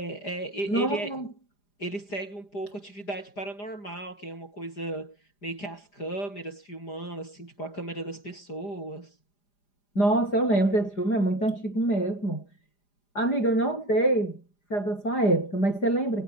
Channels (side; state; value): right; late; 4.9 ms